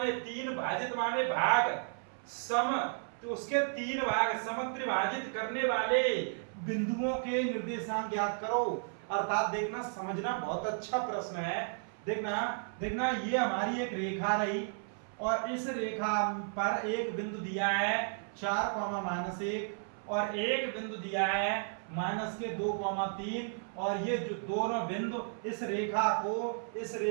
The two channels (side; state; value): left; silent; 55 dB below the other